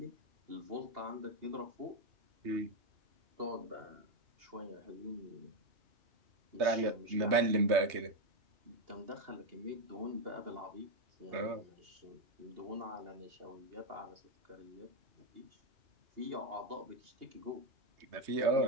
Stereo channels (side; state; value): left; late; 2.8 ms